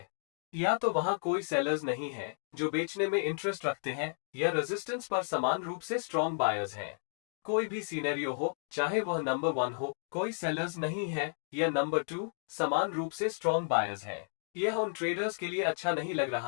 या तो वहां कोई सेलर्स नहीं है जो बेचने में इंटरेस्ट रखते हैं, या रेजिस्टेंस पर समान रूप से स्ट्रॉन्ग बायर्स हैं। कोई भी सिनेरियो हो, चाहे वह नंबर 1 हो, कोई सेलर्स नहीं है, या नंबर 2 समान रूप से स्ट्रॉन्ग बायर्स हैं। यह उन ट्रेडर्स के लिए अच्छा नहीं लग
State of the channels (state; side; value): silent; right; digital silence